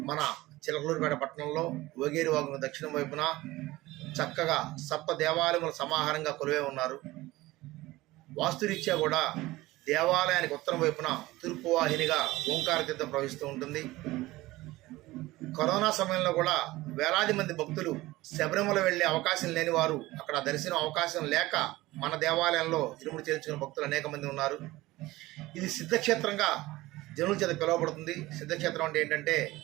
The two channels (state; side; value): quieter; left; 18.6 dB